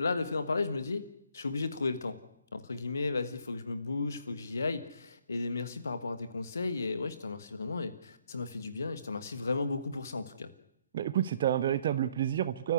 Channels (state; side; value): inverted; both; correlation -0.67